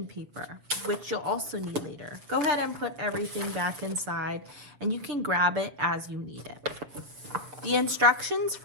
paper, which you'll also need later. Go ahead and put everything back inside, and you can grab it as you need it. The instructions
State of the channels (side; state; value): left; late; 7.2 ms